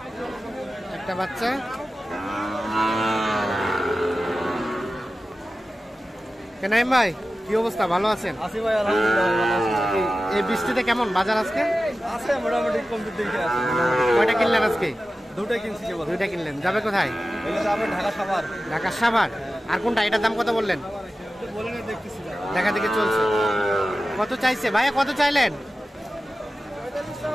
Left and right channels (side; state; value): both; normal; correlation 0.94